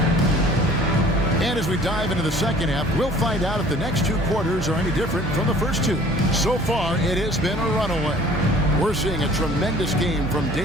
And as we dive into the second half, we'll find out if the next two quarters are any different from the first two. So far, it has been a runaway. We're seeing a tremendous game from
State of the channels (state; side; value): normal; both; correlation 0.51